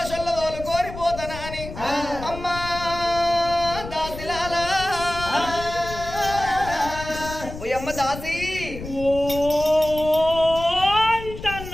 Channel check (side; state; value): left; noise; rumble, 11 dB below the sound